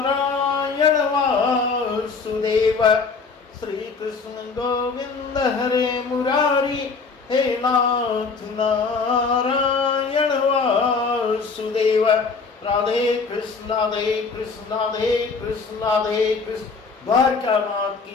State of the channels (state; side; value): quieter; right; 4.8 dB